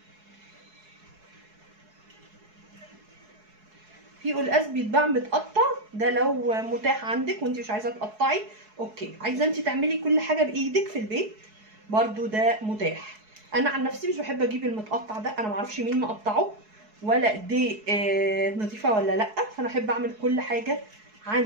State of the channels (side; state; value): left; late; 4.7 ms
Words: في قلقاس بيتباع متقطع، ده لو متاح عندك وانت مش عايزه تقطعي اوكي. عايزه انت تعملي كل حاجه بايدك في البيت برضو ده متاح. انا عن نفسي مش بحب اجيب المتقطع ده، انا معرفش مين مقطعه ولا دي نظيفه ولا لا، فانا احب اعمل كل حاجه